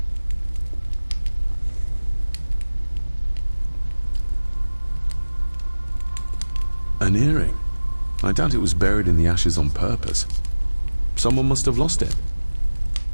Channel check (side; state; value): both; inverted; correlation -1.00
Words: An earring. I doubt it was buried in the ashes on purpose. Someone must have lost it.